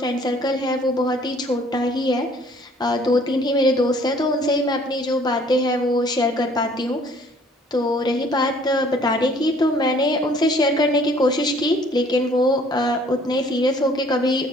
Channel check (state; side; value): normal; both; correlation 0.57